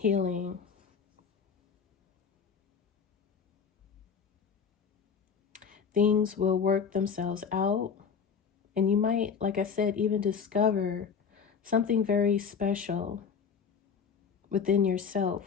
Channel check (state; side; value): quieter; right; 6.4 dB